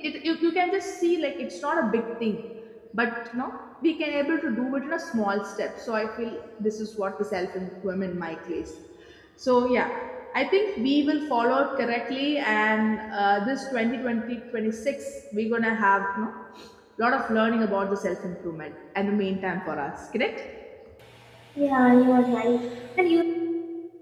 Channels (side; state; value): both; identical; correlation 1.00